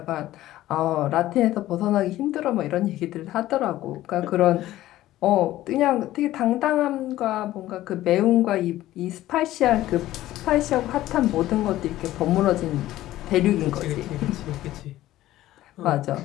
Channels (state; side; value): quieter; right; 14.9 dB